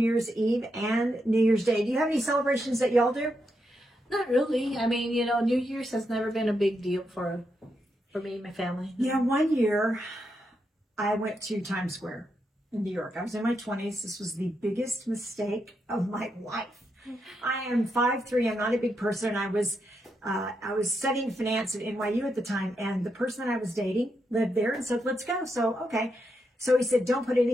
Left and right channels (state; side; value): normal; both; correlation 0.82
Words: Eve and New Year's Day. Do you have any celebrations that y'all do? Not really. I mean, you know, New Year's has never been a big deal for me and my family. Yeah, one year I went to Times Square in New York. I was in my 20s. This was the biggest mistake of my life. I am 5'3". I'm not a big person. I was studying finance at NYU at the time, and the person that I was dating lived there and said, let's go. So, okay. So he said, don't put